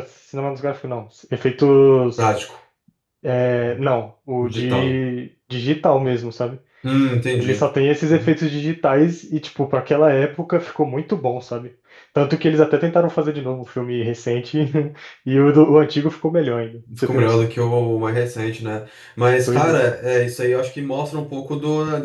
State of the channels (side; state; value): both; identical; correlation 1.00